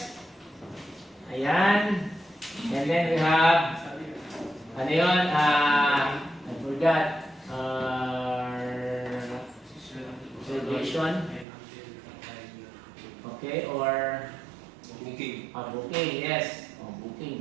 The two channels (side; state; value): left; drops out; at 11.5 s